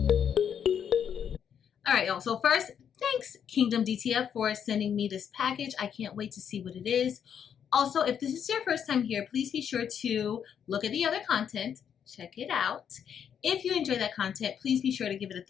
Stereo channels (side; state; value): right; quieter; 8.2 dB